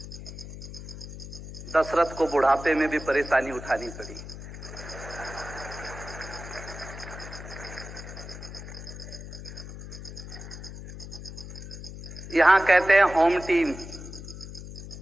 दशरथ को बुढ़ापे में भी परेशानी उठानी पड़ी। यहां कहते हैं होम टीम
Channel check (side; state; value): left; noise; hum, 11 dB below the sound